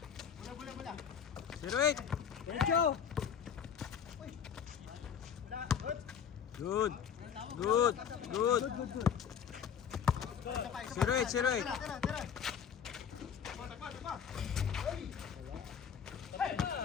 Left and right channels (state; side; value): quieter; right; 7.8 dB